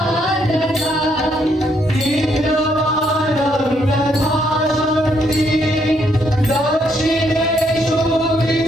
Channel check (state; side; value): normal; both; correlation 0.73